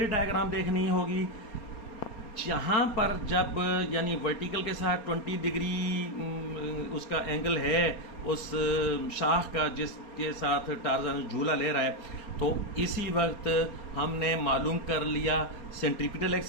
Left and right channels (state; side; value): late; right; 4.3 ms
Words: डायग्राम देखनी होगी, जहां पर जब यानी वर्टिकल के साथ 20 डिग्री उसका एंगल है उस शाख का जिसके साथ टार्जन झूला ले रहा है, तो इसी वक्त हमने मालूम कर लिया सेंट्रीपिटल